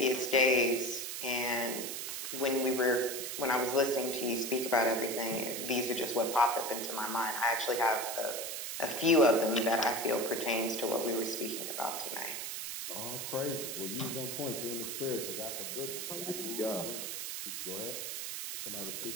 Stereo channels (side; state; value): right; noise; hiss, 5 dB below the sound